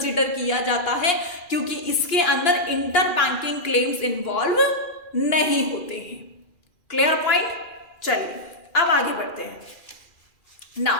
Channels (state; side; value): late; right; 2.4 ms